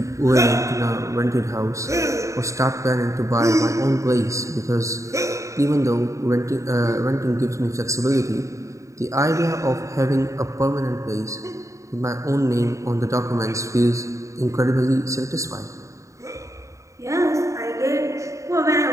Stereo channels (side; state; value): left; late; 0.15 ms